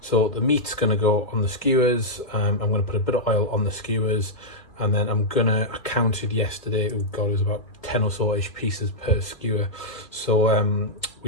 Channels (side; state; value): right; late; 2.2 ms